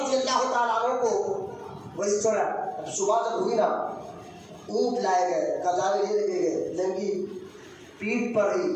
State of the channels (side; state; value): both; identical; correlation 1.00